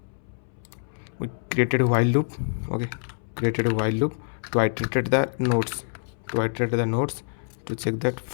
we created a while loop. Okay, created a while loop to iterate the nodes, to check that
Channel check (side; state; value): right; silent; 61 dB below the other